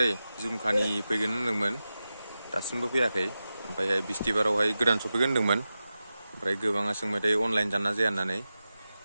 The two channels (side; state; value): both; inverted; correlation -0.93